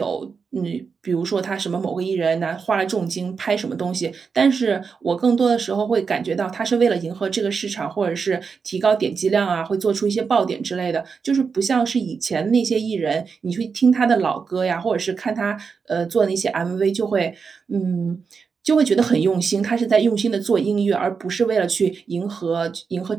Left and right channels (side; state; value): left; quieter; 5.5 dB